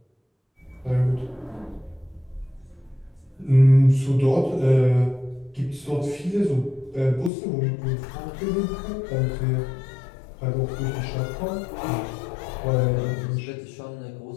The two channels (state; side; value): drops out; right; at 7.3 s